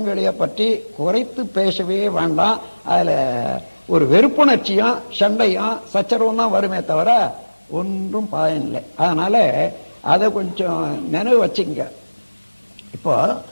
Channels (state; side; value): inverted; both; correlation -1.00